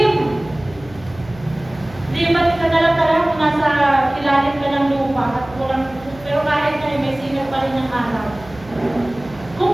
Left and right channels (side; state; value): right; noise; hum, 20 dB below the sound